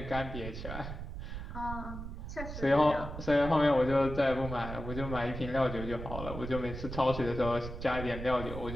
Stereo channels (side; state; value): right; noise; rumble, 8 dB below the sound